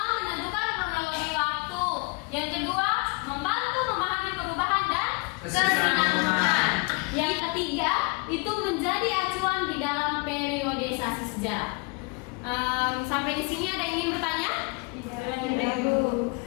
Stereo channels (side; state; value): right; quieter; 30.2 dB